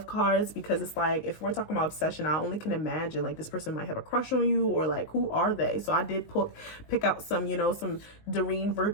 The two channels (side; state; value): right; late; 19 ms